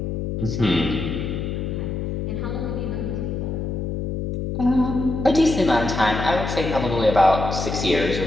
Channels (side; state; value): left; noise; hum, 3 dB below the sound